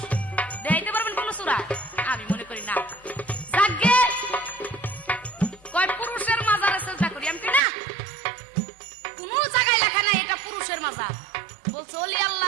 দেখাইতে পারবেন কোন সূরা? আমি মনে করি না। যাকে কয় পুরুষের মাজারে চেষ্টা করি, আমি কি না, কোন জায়গায় লেখা নাই এটা পুরুষের মাজার, বলছে ওলি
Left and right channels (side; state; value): left; drops out; at 7.6 s